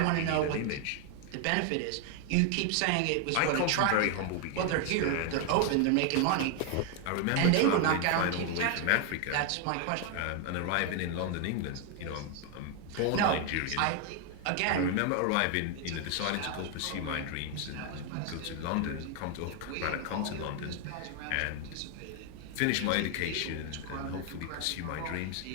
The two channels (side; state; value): both; different; correlation 0.01